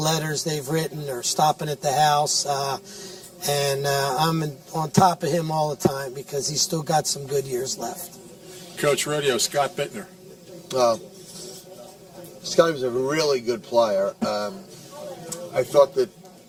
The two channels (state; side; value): identical; both; correlation 1.00